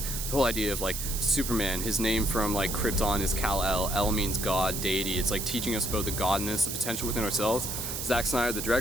the whole idea of like Superman, his name from like Krypton is Kal-El. El means God, deity. It's like teaching us about the godness, the potential within ourselves. Zack Snyder, the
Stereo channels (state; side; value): noise; right; hiss, 4 dB below the sound